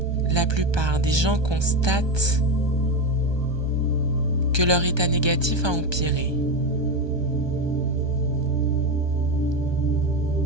La plupart des gens constatent que leur état négatif a empiré.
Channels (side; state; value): left; late; 1.2 ms